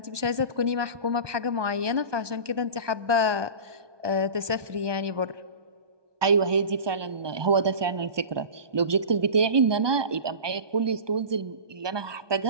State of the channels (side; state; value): left; late; 1.2 ms